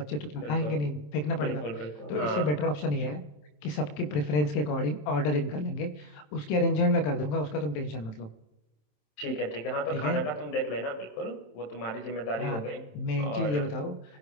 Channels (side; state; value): right; late; 27 ms